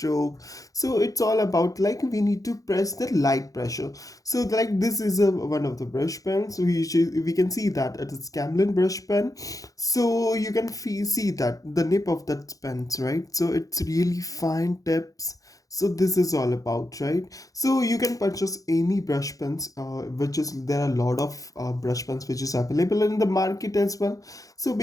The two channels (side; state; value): right; late; 0.17 ms